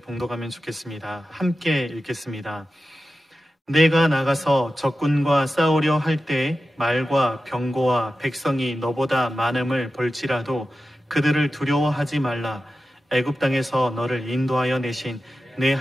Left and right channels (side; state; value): both; normal; correlation 0.93